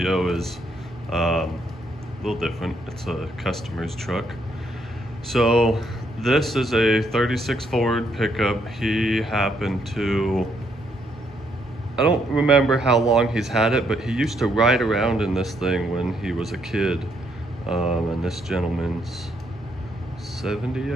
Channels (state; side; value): normal; both; correlation 0.73